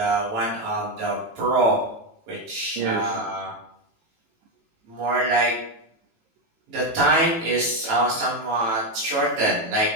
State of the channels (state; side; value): late; left; 18 ms